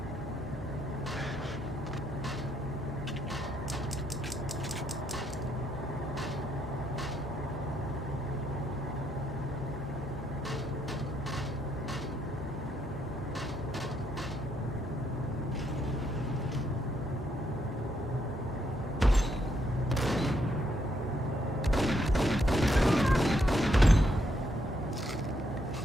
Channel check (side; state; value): both; normal; correlation 0.75